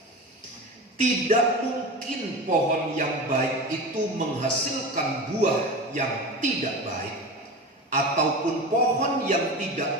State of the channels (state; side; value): normal; both; correlation 0.28